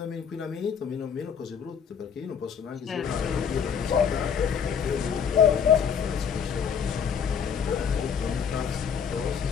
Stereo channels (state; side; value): quieter; right; 7.2 dB